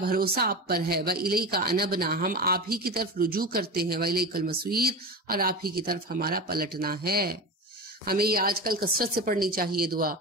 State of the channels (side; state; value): both; normal; correlation 0.26